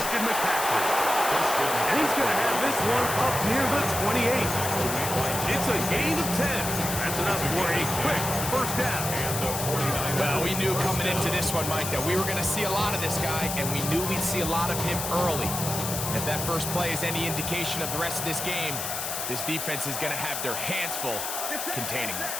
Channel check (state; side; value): noise; left; hiss, 4 dB below the sound